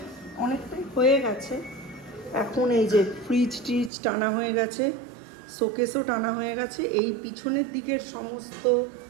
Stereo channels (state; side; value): drops out; left; at 3.9 s